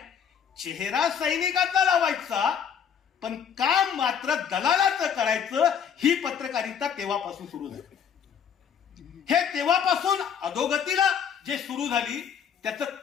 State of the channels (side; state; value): right; quieter; 7.7 dB